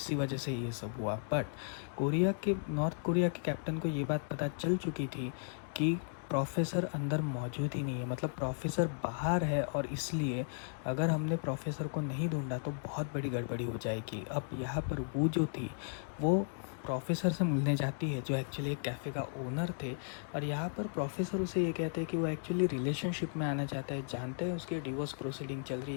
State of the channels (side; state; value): right; silent; digital silence